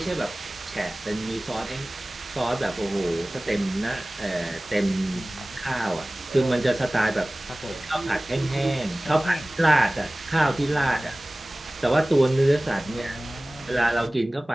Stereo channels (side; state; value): both; normal; correlation 0.98